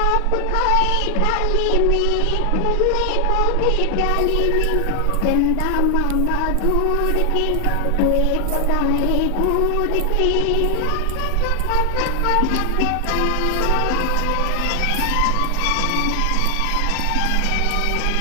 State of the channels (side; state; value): both; different; correlation 0.00